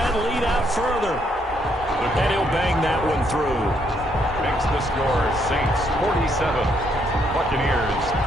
lead out further. And he'll bang that one through. Makes the score Saints 47, Buccaneers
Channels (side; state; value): both; normal; correlation 0.72